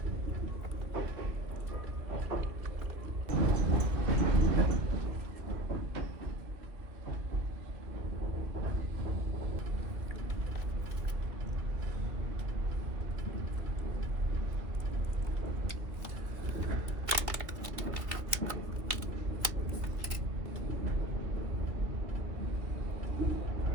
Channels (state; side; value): late; left; 2.5 ms